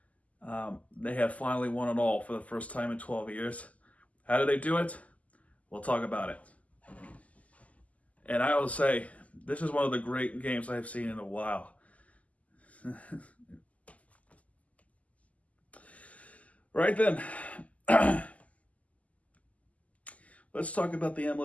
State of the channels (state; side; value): late; right; 0.071 ms